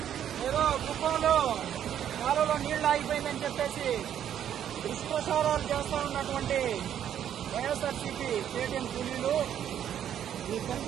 ఏదో కుప్పంలో కాలువలో నీళ్లు ఆగిపోయిందని చెప్పేసి దుష్ప్రచారాలు చేస్తూ ఉన్నటువంటి వైఎస్ఆర్సీపీ పేటీఎం కూలీలు మీకు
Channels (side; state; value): left; quieter; 9.9 dB